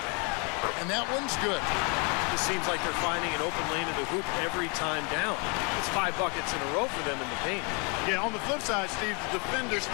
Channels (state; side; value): quieter; right; 33.3 dB